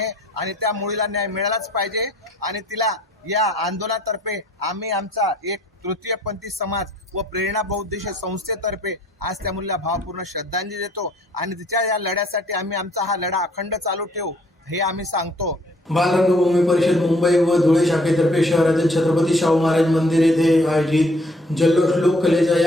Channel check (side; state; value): both; normal; correlation 0.61